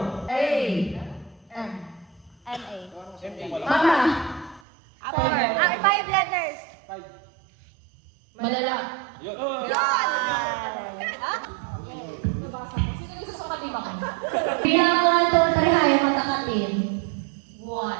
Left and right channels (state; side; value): drops out; left; at 4.6 s